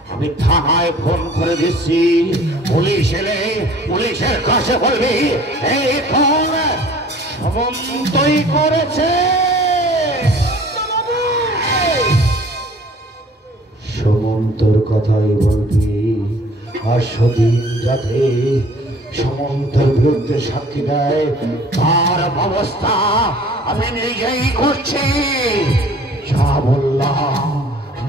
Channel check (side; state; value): both; normal; correlation 0.51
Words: আমি থানায় ফোন করে দিচ্ছি। পুলিশ এলে পুলিশের কাছে বলবি এই ফোন সমন্তই করেছে। সমন্তর কথাই বলবি। আর সেদিন যাতে সমন্তর বিরুদ্ধে সাক্ষী দেয় তার ব্যবস্থা আমি নিজেই করছি। যা বললাম